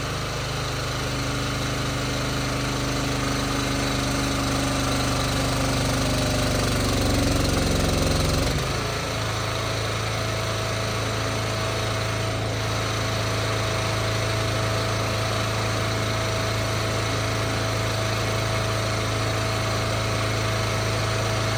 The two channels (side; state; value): both; identical; correlation 1.00